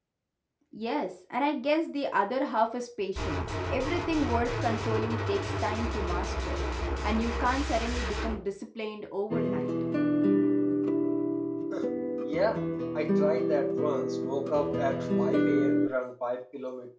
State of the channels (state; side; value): identical; both; correlation 1.00